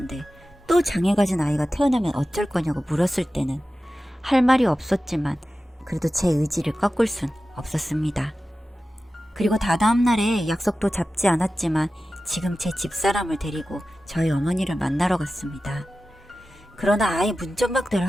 또 장애 가진 아이가 태어나면 어쩔 거냐고 물었을 때는 할 말이 없었지만 그래도 제 의지를 꺾을 순 없었습니다. 그리고 다다음 날에 약속도 잡지 않았지만 지금 제 집사람을 데리고 저희 어머니를 만나러 갔습니다. 그러나 아예 문전박대를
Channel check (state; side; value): normal; both; correlation 0.94